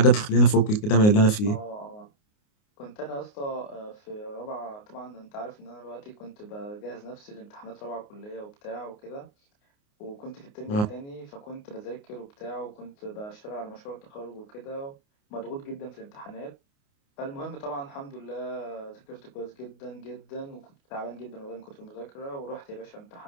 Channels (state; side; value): late; right; 29 ms